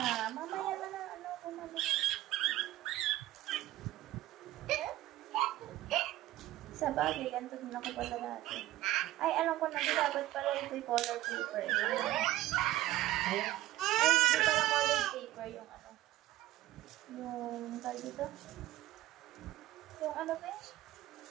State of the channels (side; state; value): left; quieter; 15.5 dB